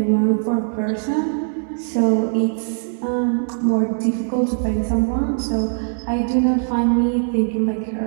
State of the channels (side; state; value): left; silent; digital silence